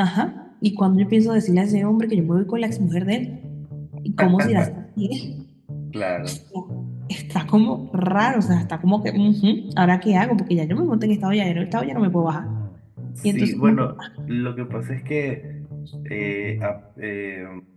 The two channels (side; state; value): both; identical; correlation 1.00